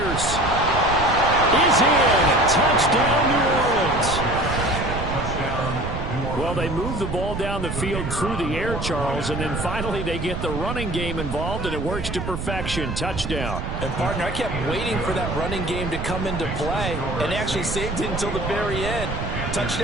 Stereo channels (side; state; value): right; noise; rumble, 5 dB below the sound